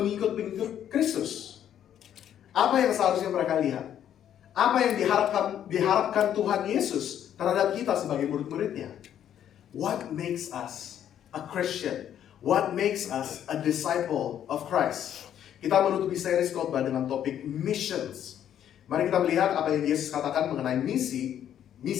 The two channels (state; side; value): quieter; right; 10.2 dB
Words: Kristus? Apa yang seharusnya mereka lihat? Apa yang diharapkan Tuhan Yesus terhadap kita sebagai murid-muridnya? What makes us a Christian? What makes us a disciple of Christ? Kita menutupi seri khotbah dengan topik missions. Mari kita melihat apa yang Yesus katakan mengenai misi